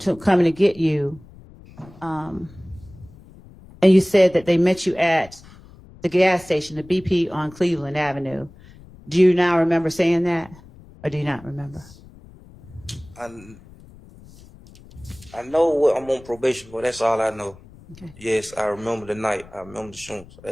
coming to get you, and you said that they met you at the gas station, the BP on Cleveland Avenue, do you now remember saying that, or do you not remember? I know what I'm on probation for. That's all I know. Okay. Yes, I remember the night. I remember the shooting.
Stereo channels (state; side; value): noise; left; rumble, 22 dB below the sound